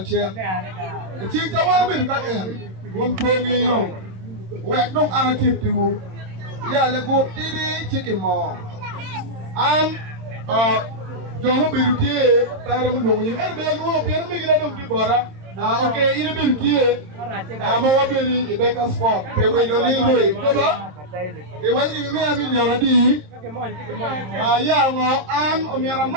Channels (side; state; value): left; late; 27 ms